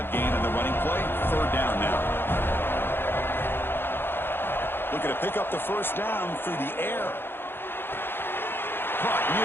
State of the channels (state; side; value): late; right; 0.10 ms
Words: gain on the running play. Third down now. Looking to pick up the first down through the air. Caught